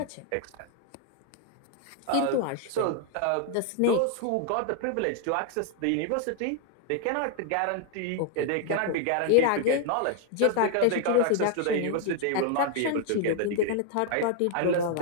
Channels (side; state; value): both; different; correlation 0.00